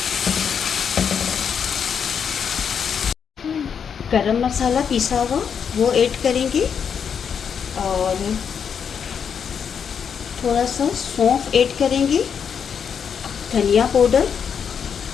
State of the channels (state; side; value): quieter; right; 7.2 dB